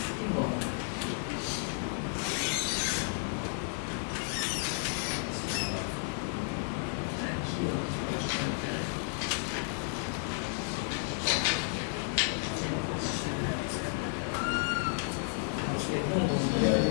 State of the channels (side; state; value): right; silent; 56 dB below the other